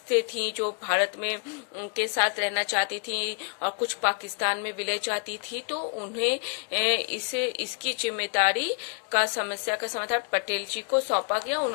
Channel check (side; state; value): right; quieter; 38.5 dB